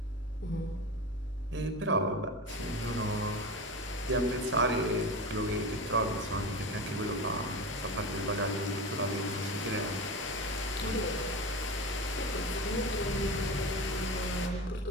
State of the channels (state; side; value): normal; both; correlation 0.26